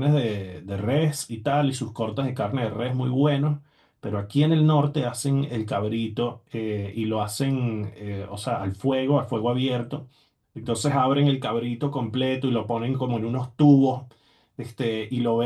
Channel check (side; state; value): both; identical; correlation 1.00